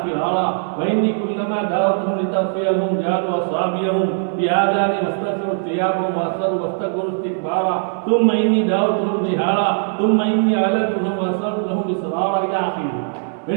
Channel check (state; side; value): silent; left; 64 dB below the other